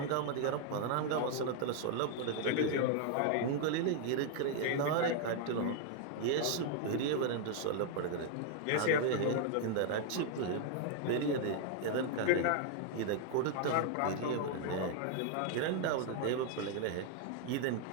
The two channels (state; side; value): different; both; correlation 0.00